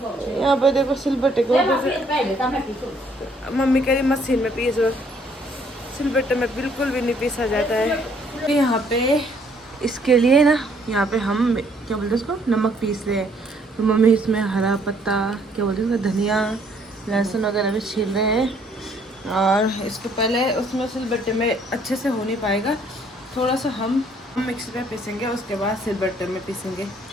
पे देखो सिलबट्टे को मम्मी कह रही मशीन में पीसो, सिलबट्टे में बिल्कुल भी नहीं पीसा जाता है। यहाँ पे इसके लिए ना यहाँ पे हम क्या बोलते हैं उसको नमक पीस रहे हैं। तो मम्मी इसमें हरा पत्ता क्या बोलते हैं धनिया लहसुन वगैरह भी छील रहे हैं और इसको पहले उसमें सिलबट्टे में अच्छे से हो नहीं पाएगा, थोड़ा सा हम मिक्सी पे पीसेंगे, उसके बाद सिलबट्टे में पीसेंगे।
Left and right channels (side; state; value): both; normal; correlation 0.64